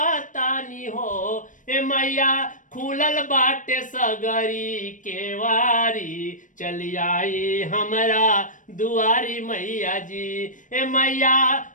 हो। ए मैया खुलल बाटे सगरी केवारी, चली आई हमरा दुआरी मैया जी। ए मैया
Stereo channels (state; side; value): late; right; 0.37 ms